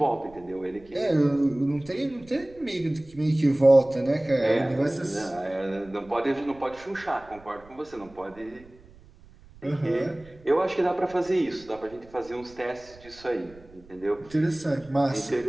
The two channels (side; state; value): right; noise; rumble, 24 dB below the sound